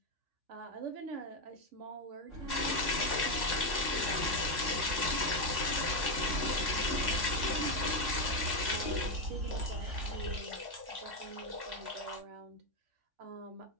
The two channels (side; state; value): left; late; 3.5 ms